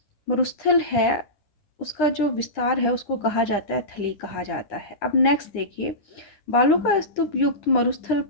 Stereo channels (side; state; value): right; late; 9.9 ms